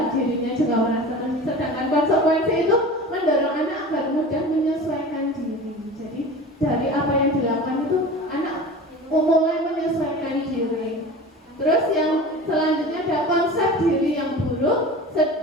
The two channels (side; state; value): both; normal; correlation 0.36